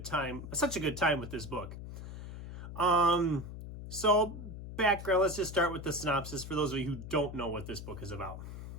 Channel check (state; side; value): noise; left; hum, 10 dB below the sound